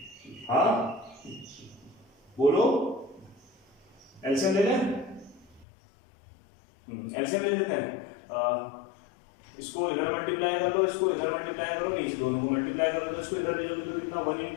हाँ बोलो, एलसीएम ले लें? एलसीएम ले लेते हैं। इसको इधर मल्टीप्लाई कर लो, इसको इधर मल्टीप्लाई करो, नीचे दोनों को मल्टीप्लाई करो, तो इसको इधर ले जाओ तो कितना? 1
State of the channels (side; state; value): right; drops out; at 5.7 s